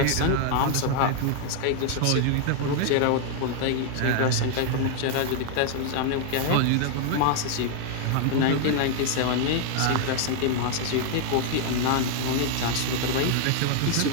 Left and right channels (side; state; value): both; different; correlation 0.00